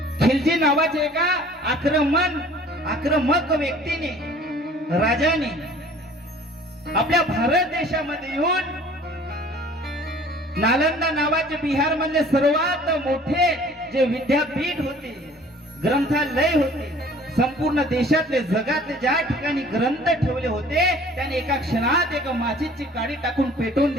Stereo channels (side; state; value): both; normal; correlation 0.51